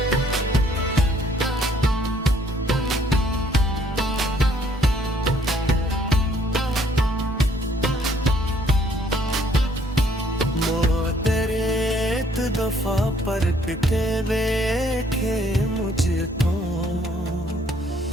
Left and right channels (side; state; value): both; normal; correlation 0.64